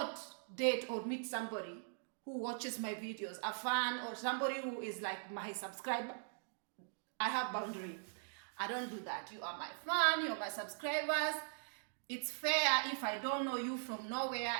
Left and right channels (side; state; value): left; silent; digital silence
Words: date or meet somebody who watches my videos, a fan, or somebody who is like my subscriber. I have boundary. I don't do that. You are my fan, you are my subscribers. It's fair if I don't know you from nowhere,